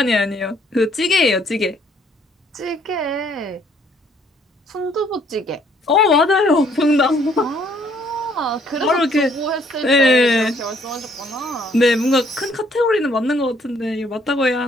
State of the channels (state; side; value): normal; both; correlation 0.64